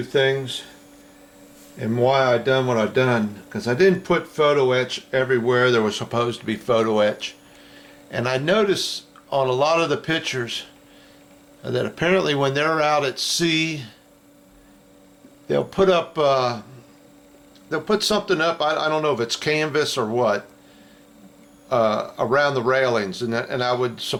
things and why I done what I done. Because I didn't put photo etch everywhere there was supposed to be photo etch. And I noticed on a lot of the pictures that apparently when they're out at sea, they'll put up, they'll put something up. I don't know if it's canvas or what. Around the railings, and I would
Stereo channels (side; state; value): both; identical; correlation 1.00